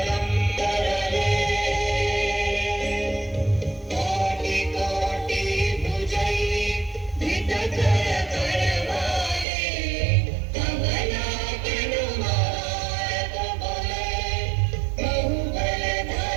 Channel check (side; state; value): left; drops out; at 9.5 s